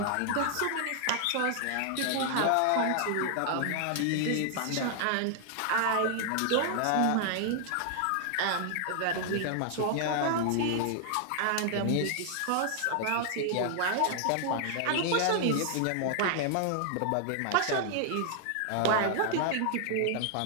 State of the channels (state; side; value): different; both; correlation 0.00